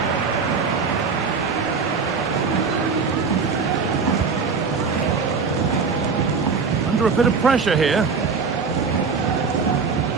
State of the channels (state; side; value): quieter; left; 5.2 dB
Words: Under a bit of pressure here.